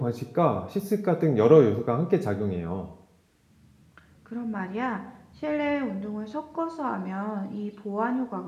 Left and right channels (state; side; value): identical; both; correlation 1.00